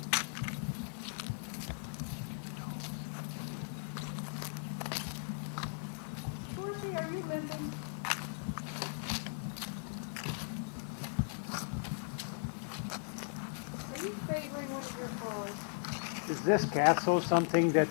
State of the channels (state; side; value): silent; right; digital silence